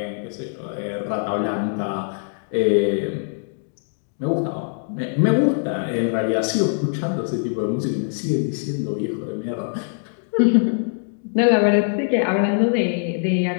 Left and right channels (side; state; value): right; silent; 64 dB below the other